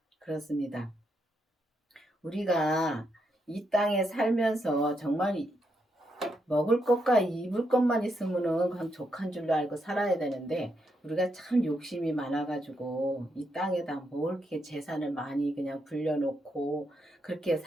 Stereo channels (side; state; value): both; normal; correlation 0.80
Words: 그렇습니다. 우리가 이 땅에 살면서 정말 먹을 것과 입을 것만 있으면은 그냥 족한 줄로 알고 살아야 되는데, 우리가 참 욕심이 많아가지고 이 땅에다 뭘 이렇게 재산을 많이 그냥 불려놓고 그렇게